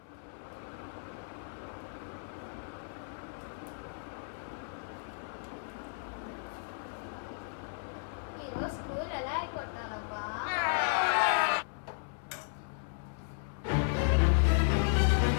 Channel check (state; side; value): silent; right; 55 dB below the other